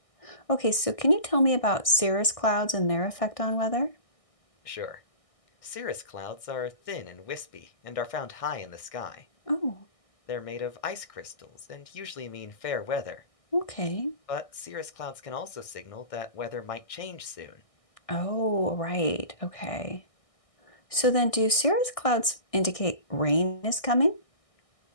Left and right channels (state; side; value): late; right; 1.6 ms